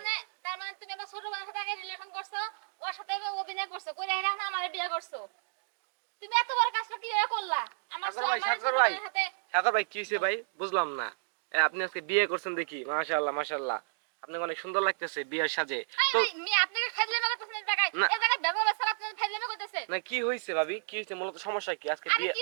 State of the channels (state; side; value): silent; left; digital silence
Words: মানে তুমি আমার ছোট বোনের সাথে আগে রিলেশন করছো, ওর সাথে অভিনয় করছো, করে এখন আমার বিয়ে করছো। তুমি এত বড় কাজটা কিভাবে করলা? আমার সাগর ভাই, আমার ছোট সাগর ভাই, বোনের সাথে সাগর ভাই, কি হয়েছে ভাই? বুঝলাম না। আপনি আজকে বিয়ে করছেন দেখি, মাশাআল্লাহ মাশাআল্লাহ, আপনাকে অনেক সুন্দর লাগতেছে বিয়ের সাজে। তো মি আপনাকে ফাজলামি করতেছেন এই জায়গায়, না। এই জায়গায় ব্যবহার স্যার আপনি ফাজলামি করতেছেন। না, কি হয়েছে ভাবি? কি হয়েছে? মূলত সমস্যা কি আজকে আরে বিয়ে? কি